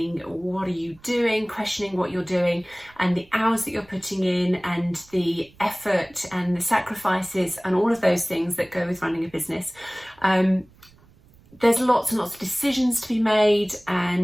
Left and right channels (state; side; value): noise; right; rumble, 28 dB below the sound